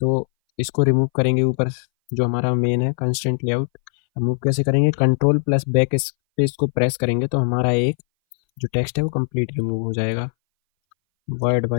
इसको रिमूव करेंगे ऊपर, जो हमारा मेन है कंस्ट्रेंट लेआउट। रिमूव कैसे करेंगे, कंट्रोल प्लस बैक स्पेस को प्रेस करेंगे तो हमारा एक जो टेक्स्ट है वो कंप्लीट रिमूव हो जाएगा। वर्ड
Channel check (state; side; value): silent; right; 61 dB below the other